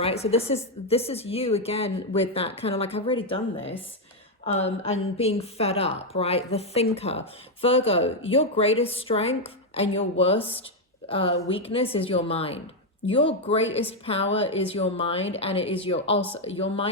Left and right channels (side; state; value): both; normal; correlation 0.02